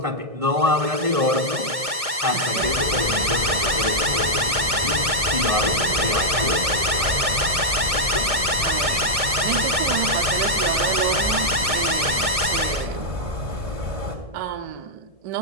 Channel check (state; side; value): late; left; 1.6 ms